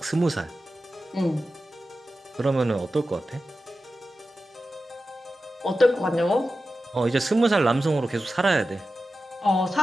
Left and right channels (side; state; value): both; normal; correlation 0.93